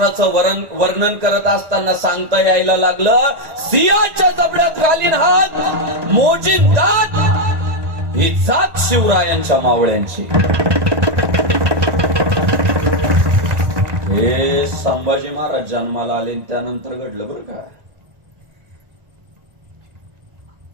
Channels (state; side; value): late; left; 1.8 ms